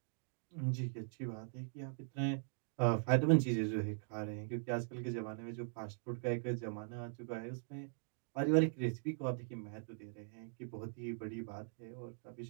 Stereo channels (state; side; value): silent; left; digital silence